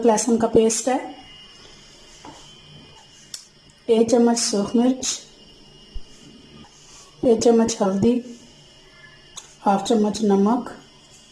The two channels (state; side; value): identical; both; correlation 1.00